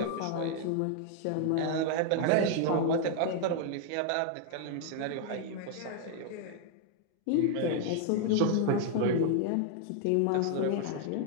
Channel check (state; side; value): different; both; correlation 0.00